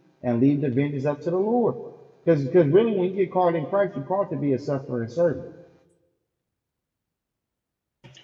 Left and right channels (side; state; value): both; identical; correlation 1.00